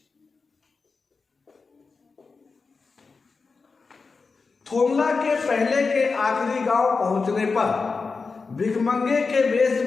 थोमला के पहले के आखिरी गांव पहुंचने पर भिखमंगे के वेश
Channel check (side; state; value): right; quieter; 4.5 dB